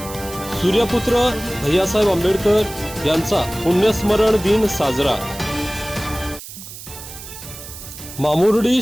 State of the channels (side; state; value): right; noise; hiss, 13 dB below the sound